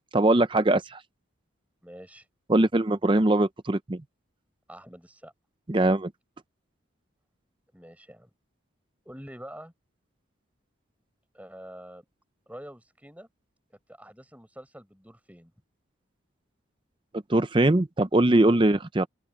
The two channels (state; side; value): normal; both; correlation 0.69